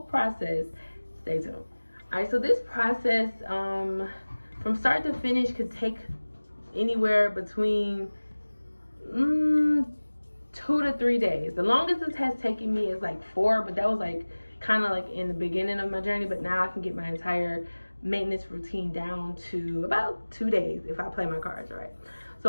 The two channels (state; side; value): inverted; both; correlation -1.00